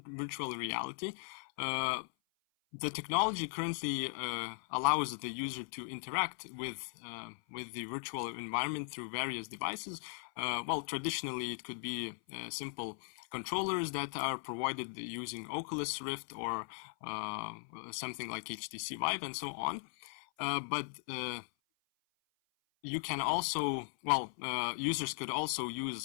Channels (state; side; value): silent; right; 52 dB below the other